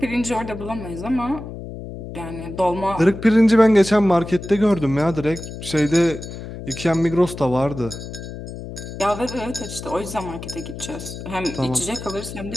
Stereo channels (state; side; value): noise; left; hum, 10 dB below the sound